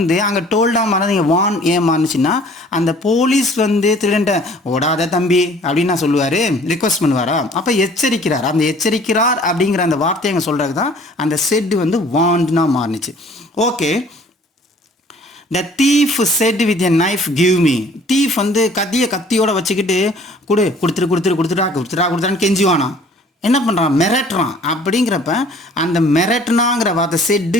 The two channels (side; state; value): both; normal; correlation 0.53